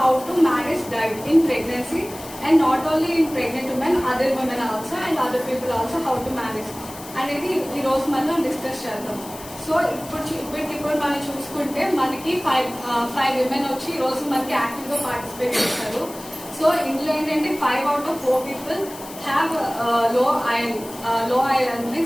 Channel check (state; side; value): noise; left; hiss, 16 dB below the sound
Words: to manage diet in pregnancy and not only in pregnant women, other women also and other people also how to manage అనేది ఈ రోజు మనం discuss చేద్దాం. So ఇప్పుడు మనం చూసుకుంటే మనకి five women వచ్చి ఈ రోజు మనకి యాక్టివ్ గా పార్టిసిపేట్ చేస్తారు. సో ఇందులో ఏంటంటే 5 out of 4 people have low iron